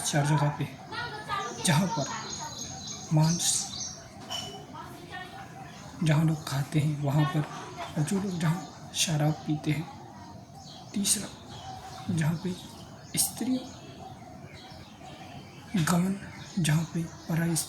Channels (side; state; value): both; identical; correlation 1.00